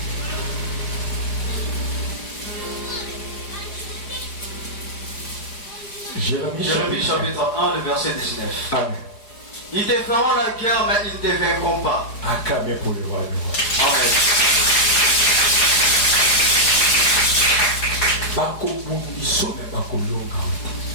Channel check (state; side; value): late; right; 4.9 ms